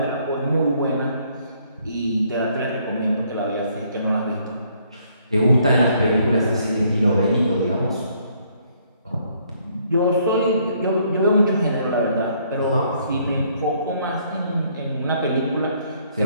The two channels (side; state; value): both; inverted; correlation -0.66